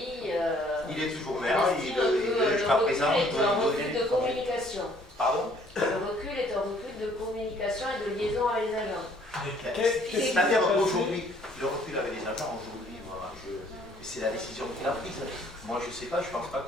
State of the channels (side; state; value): both; normal; correlation 0.61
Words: il est toujours maire. Jusqu'à présent, il est un recul de communication. Pardon? Le recul est un recul de communication et de liaison avec les agents. C'est-à-dire aujourd'hui, le recul avec les agents, aujourd'hui, c'est la décision qu'il a prise. Moi, je ne sais pas, je ne pense pas